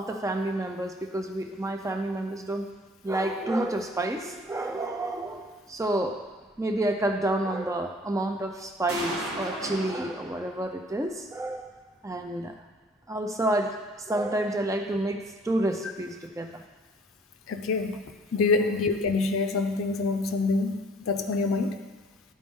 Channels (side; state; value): both; normal; correlation 0.56